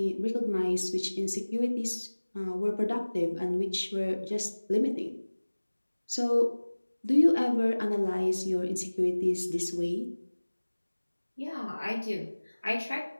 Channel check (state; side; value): inverted; both; correlation -1.00